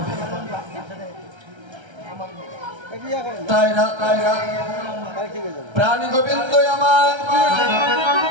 তাই না প্রাণী গোবিন্দ আমার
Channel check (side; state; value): left; late; 1.3 ms